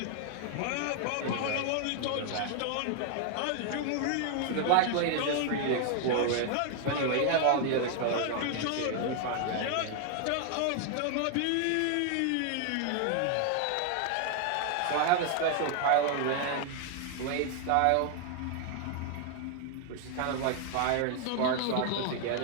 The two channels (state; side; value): different; both; correlation 0.00